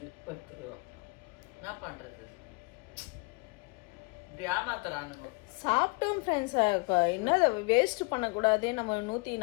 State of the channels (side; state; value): right; quieter; 27.9 dB